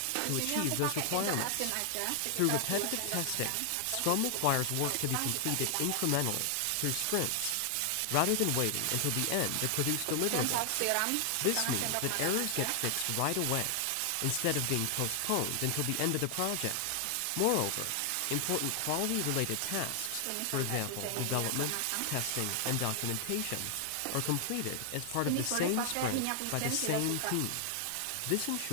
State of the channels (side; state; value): both; different; correlation 0.00